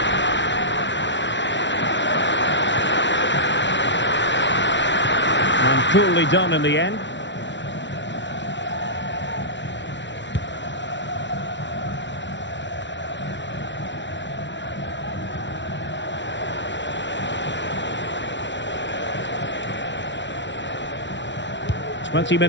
coolly done in the end. "20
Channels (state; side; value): late; right; 0.52 ms